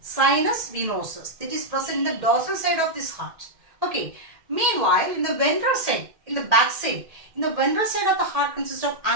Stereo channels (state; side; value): late; left; 1.8 ms